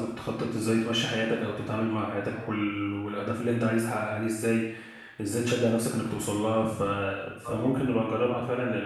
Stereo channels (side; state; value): both; identical; correlation 1.00